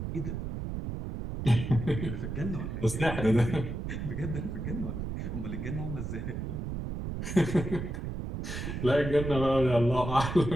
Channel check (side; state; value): right; noise; rumble, 5 dB below the sound